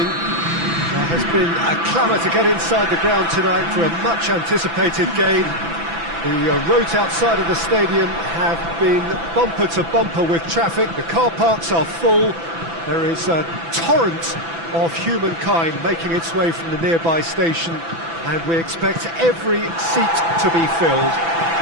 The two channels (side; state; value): left; late; 6.0 ms